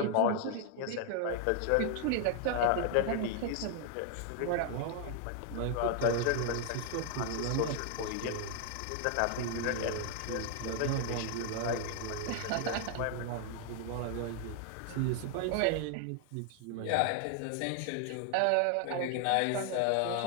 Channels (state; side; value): different; both; correlation 0.00